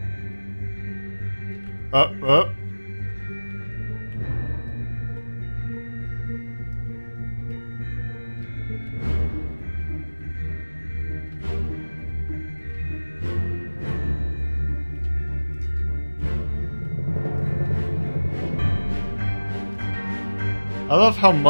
Up, up. I love how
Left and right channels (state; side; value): inverted; both; correlation -1.00